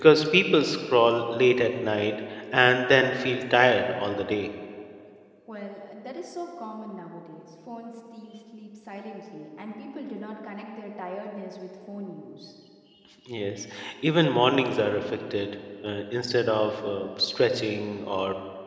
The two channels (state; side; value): identical; both; correlation 1.00